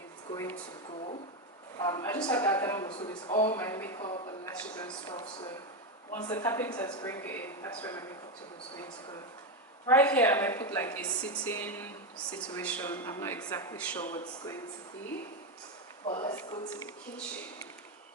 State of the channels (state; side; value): normal; both; correlation 0.10